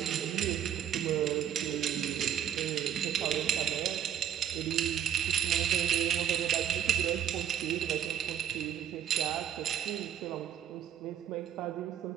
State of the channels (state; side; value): quieter; left; 9.9 dB